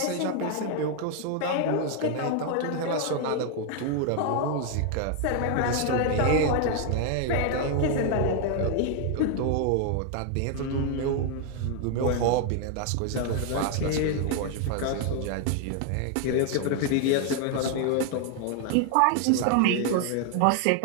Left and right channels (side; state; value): both; different; correlation 0.00